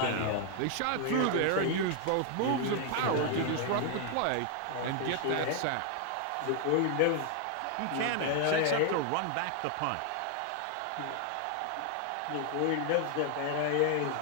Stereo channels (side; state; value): both; different; correlation 0.00